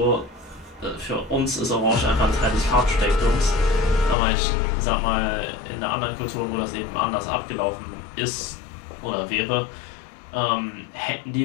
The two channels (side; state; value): right; drops out; at 4.2 s